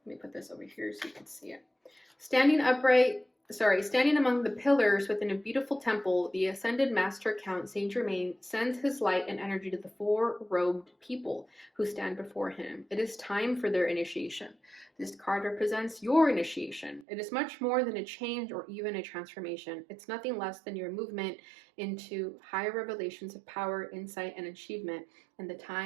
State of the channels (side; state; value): left; drops out; at 17.1 s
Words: let me put this over here so you can see it. Standing among the pillars within a beautiful temple, the ascended master Count Saint Germain sends his light and energy to the four robed people who stand before him. It is time for their initiation. This card represents your initiation. It is much more than a change or even a transformation. It's nothing less than your movement into higher revelations of power, insight, and achievement, and the